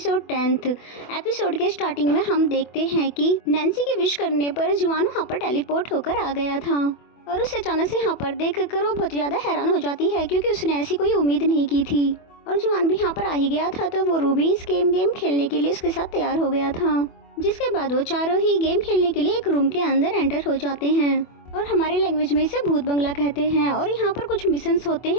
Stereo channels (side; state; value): right; late; 24 ms